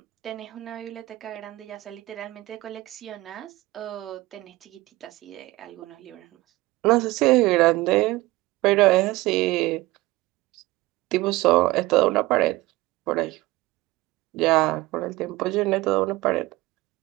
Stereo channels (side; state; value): left; quieter; 19.5 dB